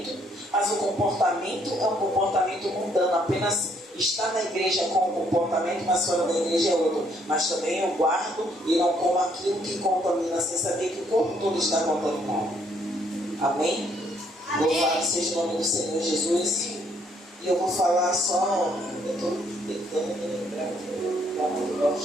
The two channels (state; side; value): normal; both; correlation 0.68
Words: mas o comportamento é um comportamento mundano, apenas está na igreja com um comportamento, mas fora da igreja é outro. Mas também eu guardo e não como aquilo que contamina, sem saber que o corpo todo está contaminado. Amém? Louvado seja o nome do Senhor Jesus. E eu vou falar só, eu estou tentando me lembrar aqui, para não